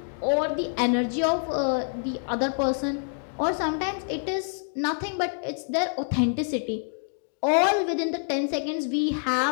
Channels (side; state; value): right; silent; 60 dB below the other